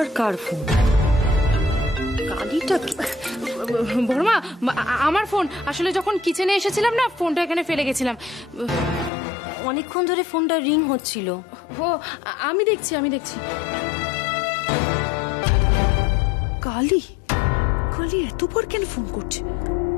কার ফোন? কালিটা কি? বর্মা, আমার ফোন আসলে যখন কিচেনে এসেছিলাম না, ফোনটা এখানে ফেলে গেছিলাম। অনেকক্ষণ ধরে ফোনটা রিং হচ্ছিল। ও, আমি দেখছি। কালী, কালী এতবার কেন ফোন করছে?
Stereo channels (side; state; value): right; drops out; at 9.1 s